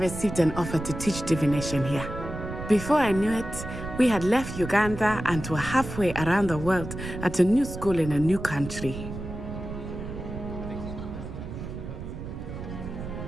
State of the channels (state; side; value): noise; right; rumble, 8 dB below the sound